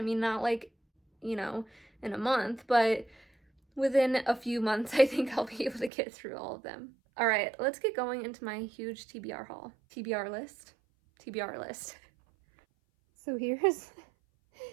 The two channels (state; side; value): drops out; left; at 5.9 s